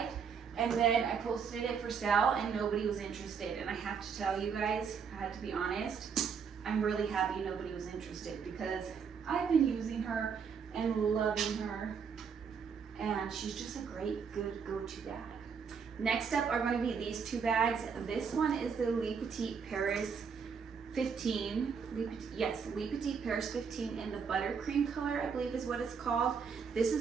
And then I posted it for sale and nobody was interested. And I have to tell you guys, I had to be honest, I'm really happy nobody was interested because I've been using her and loving her. And she's just a great, good go-to bag. Next up are going to be these two bags. This one is the Le Petit Paris 15. Le Petit Paris 15 in the buttercream color, I believe is what it's called. This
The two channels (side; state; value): left; quieter; 6.3 dB